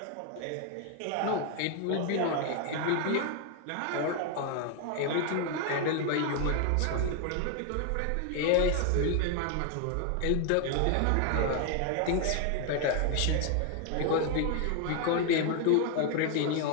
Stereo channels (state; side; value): different; both; correlation 0.01